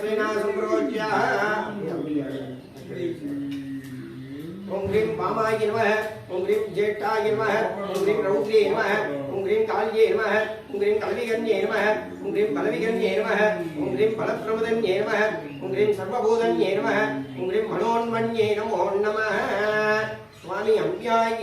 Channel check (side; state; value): both; identical; correlation 1.00